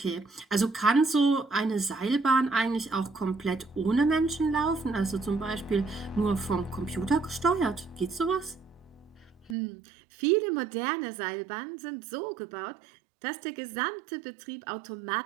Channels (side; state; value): left; drops out; at 9.6 s